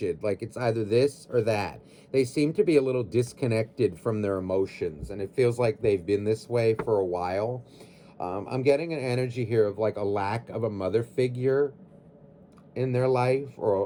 like it's either this or that. They seem to be a little disconnected from their emotions, and it feels like they've been this way for a while. I'm getting an energy here of like a lack of a mother figure in their life,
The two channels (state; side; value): identical; both; correlation 1.00